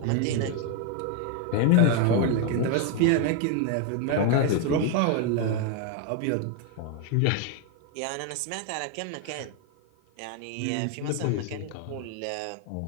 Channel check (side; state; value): both; different; correlation 0.01